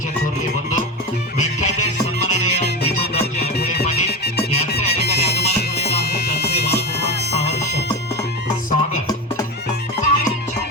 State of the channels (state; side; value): normal; both; correlation 0.20